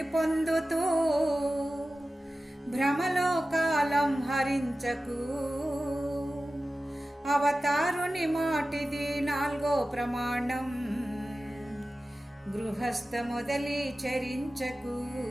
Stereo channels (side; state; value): both; normal; correlation 0.95